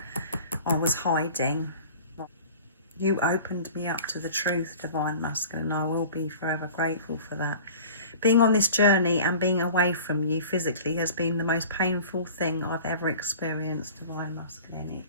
I was hiding. You opened me up to the truth, Divine Masculine. I will be forever grateful for that. Being on this journey and being away from you physically has been the most painful thing I've ever experienced, Divine Masculine.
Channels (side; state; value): both; inverted; correlation -0.42